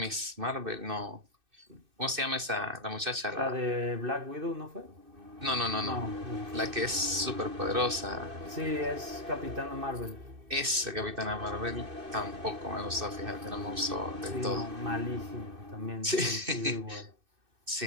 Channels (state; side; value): late; left; 2.6 ms